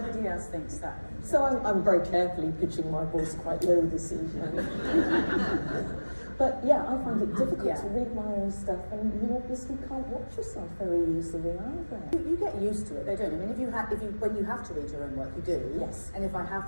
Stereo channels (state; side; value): inverted; both; correlation -1.00